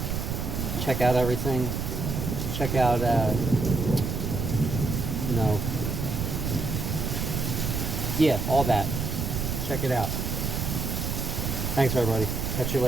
Check out everything. Check out, you know, yeah, all that. Check it out. Thanks, everybody. Catch you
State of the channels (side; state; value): right; noise; rumble, 2 dB below the sound